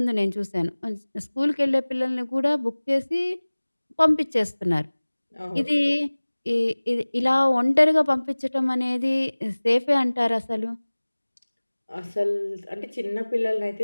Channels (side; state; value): both; inverted; correlation -1.00